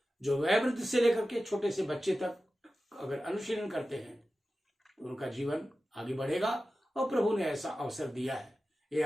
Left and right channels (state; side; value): normal; both; correlation 0.94